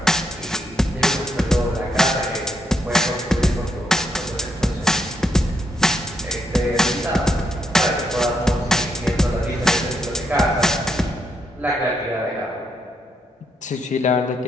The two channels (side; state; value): both; normal; correlation 0.78